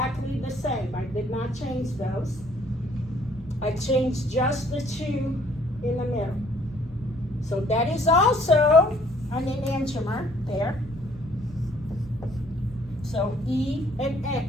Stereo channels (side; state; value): both; normal; correlation 0.61